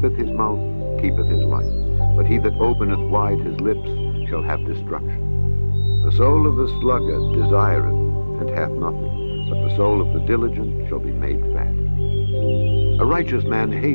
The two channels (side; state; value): both; inverted; correlation -1.00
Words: his mouth keepeth his life, but he that openeth wide his lips shall have destruction. The soul of the sluggard desireth, and hath nothing, but the soul of the diligent shall be made fat. A righteous man